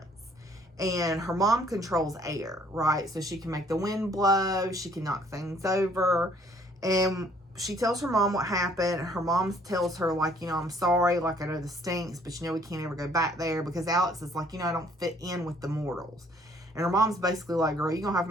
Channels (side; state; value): both; normal; correlation 0.61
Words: And her mom controls air, right? So she can make the wind blow. She can knock things over. And she tells her mom what happened. Her mom tells her, like, I'm sorry. Like, I know this stinks, but we can't ever go back there. Because Alex is like, I don't fit in with the mortals. And her mom's basically like, girl, you're going to have to